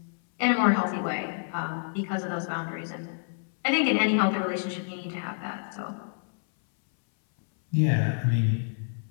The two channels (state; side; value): silent; right; 59 dB below the other